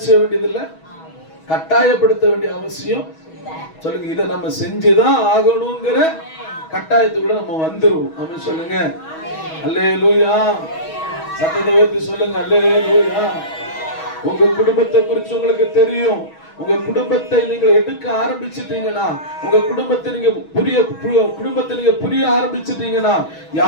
செய்ய வேண்டியது இல்ல, கட்டாயப்படுத்த வேண்டிய அவசியம். சொல்லுங்க, இதை நம்ம செஞ்சுதான் ஆகணுங்கிற கட்டாயத்துக்குள்ள நம்ம வந்துருவோம். ஆமென் சொல்லுங்க அல்லேலூயா. சத்தத்தை உயர்த்தி சொல்லுங்க அல்லேலூயா. உங்க குடும்பத்தை குறித்து உங்களுக்கு தெரியும். உங்க குடும்பத்தை நீங்க எடுக்க ஆரம்பிச்சிட்டீங்கன்னா, உங்க குடும்பத்தை நீங்க புரிய ஆரம்பிச்சிட்டீங்கன்னா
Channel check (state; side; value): late; right; 6.2 ms